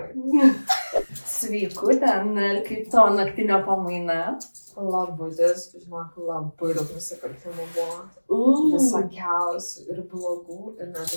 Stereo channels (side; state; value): both; inverted; correlation -1.00